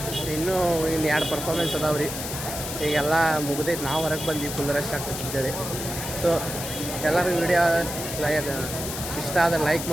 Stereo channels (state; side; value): noise; left; hiss, 6 dB below the sound